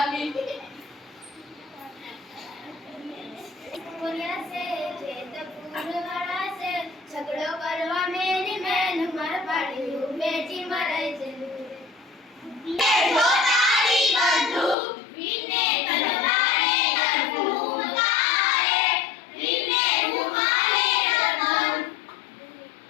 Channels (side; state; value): right; drops out; at 14.8 s